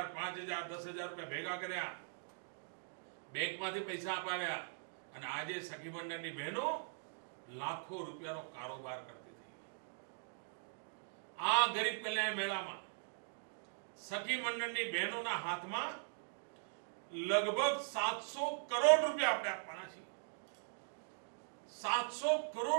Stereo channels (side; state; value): left; silent; digital silence